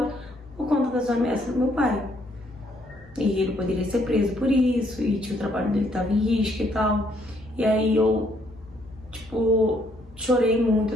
por conta das ameaças do meu pai. E ele poderia ser preso por isso, e o trabalho dele estava em risco e tal. E aí eu, tipo, chorei muito,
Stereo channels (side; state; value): both; normal; correlation 0.69